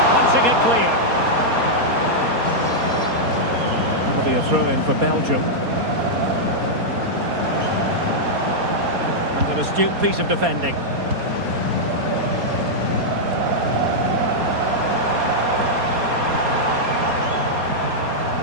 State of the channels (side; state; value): left; late; 4.2 ms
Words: Punching it clear. That'll be a throw-in for Belgium. And an astute piece of defending.